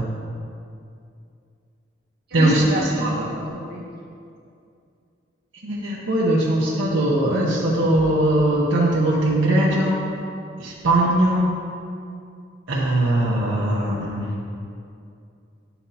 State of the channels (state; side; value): normal; both; correlation 0.62